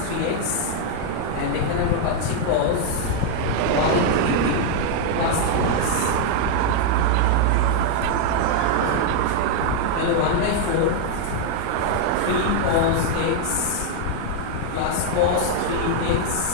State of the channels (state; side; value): different; both; correlation 0.00